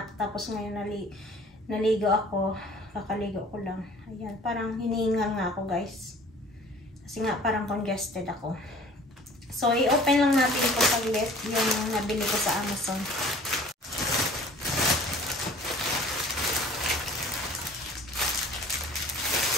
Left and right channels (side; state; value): both; normal; correlation 0.49